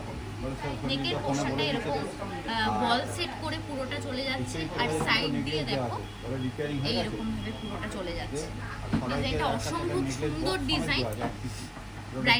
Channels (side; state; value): both; identical; correlation 1.00